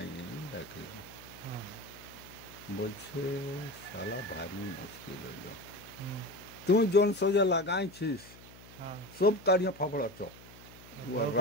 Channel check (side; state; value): left; noise; hum, 20 dB below the sound